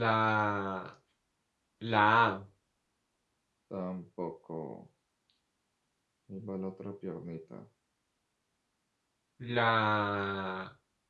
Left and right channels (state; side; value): identical; both; correlation 1.00